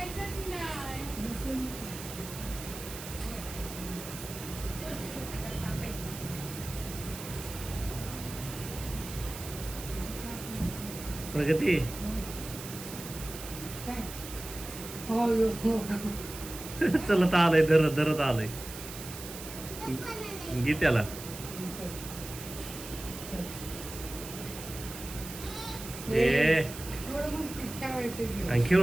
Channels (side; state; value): right; noise; hiss, 11 dB below the sound